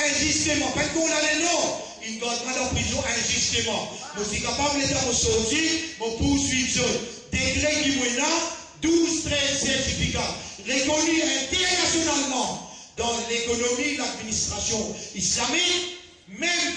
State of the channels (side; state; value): both; identical; correlation 1.00